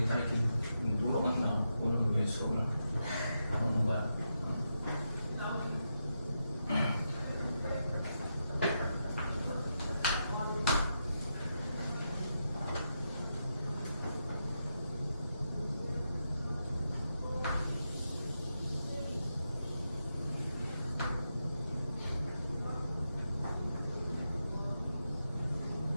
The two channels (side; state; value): both; inverted; correlation -0.85